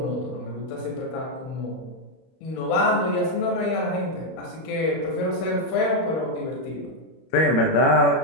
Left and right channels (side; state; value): right; late; 31 ms